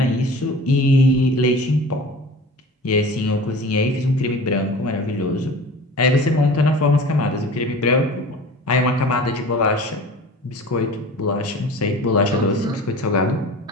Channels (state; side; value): normal; both; correlation 0.39